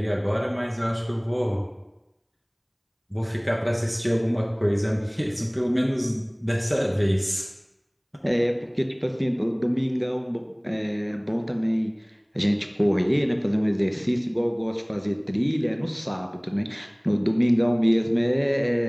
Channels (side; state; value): both; identical; correlation 1.00